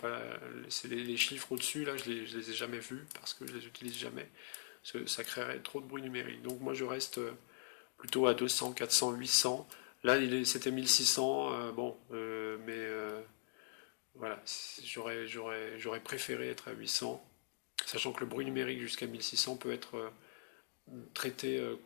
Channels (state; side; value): silent; right; digital silence